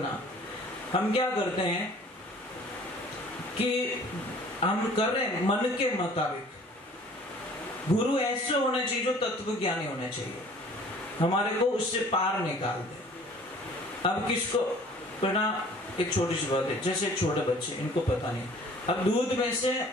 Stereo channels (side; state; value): both; normal; correlation 0.51